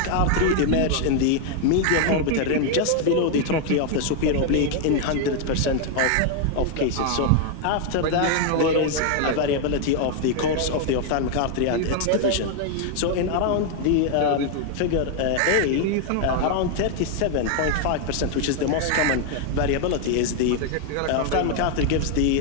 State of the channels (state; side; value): different; both; correlation 0.00